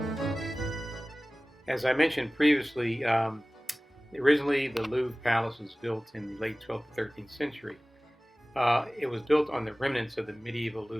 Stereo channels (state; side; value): normal; both; correlation 0.98